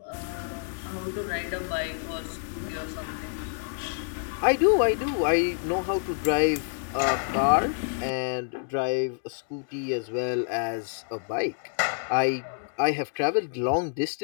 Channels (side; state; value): right; silent; digital silence